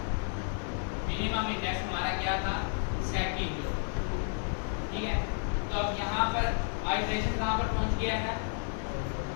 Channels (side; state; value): right; silent; 57 dB below the other